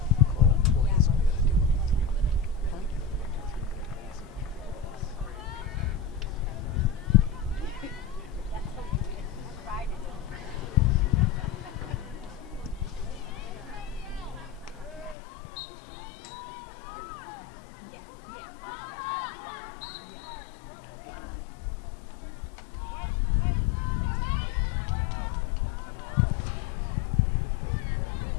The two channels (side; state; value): right; drops out; at 15.2 s